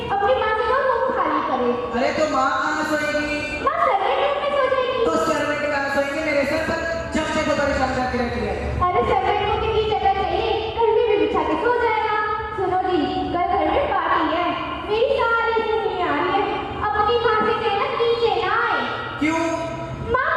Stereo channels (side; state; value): both; identical; correlation 1.00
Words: अपनी माँ से कहो रूम खाली करे। अरे तो माँ कहाँ सोएगी? माँ सेपरेट रूम में सो जाएगी। तो सर्वेंट कहाँ सोएंगे? मेरे सर पर जब से तो परेशान करके रखी है। अरे सेपरेट रूम की जगह चाहिए, घर में भी बिछा के सो जाएगा। सुनो जी, कल घर में पार्टी है, मेरी सारी दुनिया आ रही है। अपनी माँ से कहना नीचे ना आए। क्यों? माँ